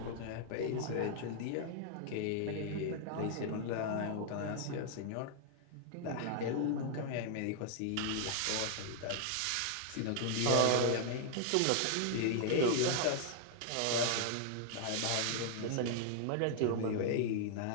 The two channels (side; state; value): both; different; correlation 0.00